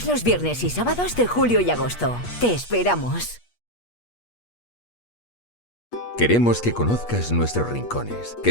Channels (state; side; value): late; right; 8.4 ms